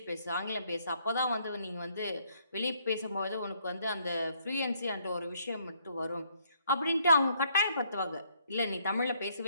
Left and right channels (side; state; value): both; inverted; correlation -0.69